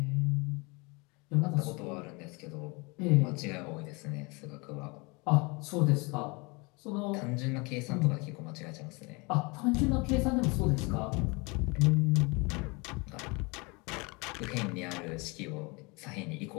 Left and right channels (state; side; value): quieter; right; 28.0 dB